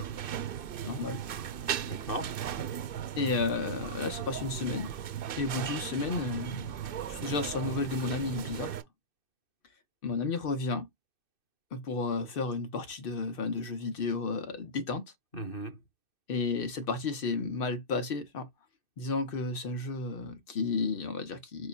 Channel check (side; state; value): right; late; 2.6 ms